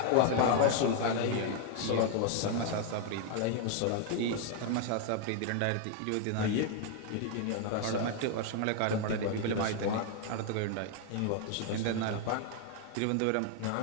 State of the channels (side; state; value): both; different; correlation 0.00